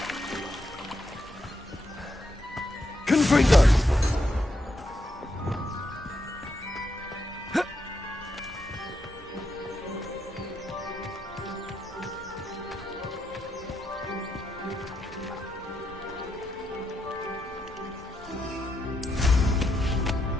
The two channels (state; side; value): normal; both; correlation 0.82